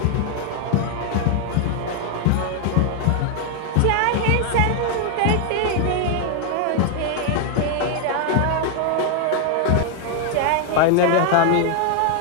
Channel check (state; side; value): different; both; correlation 0.00